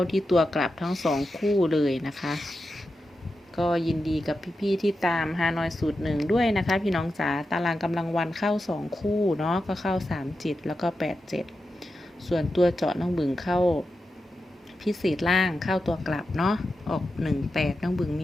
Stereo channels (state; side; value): normal; both; correlation 0.90